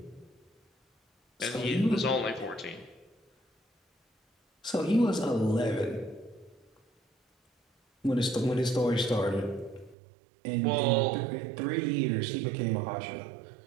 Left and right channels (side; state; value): left; drops out; at 10.0 s